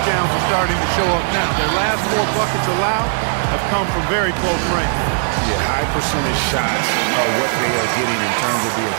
are starting to show up now. Their last 4 buckets allowed have come from very close range. Yeah, high percentage shots are what they are getting in terms of the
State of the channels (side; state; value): left; silent; 67 dB below the other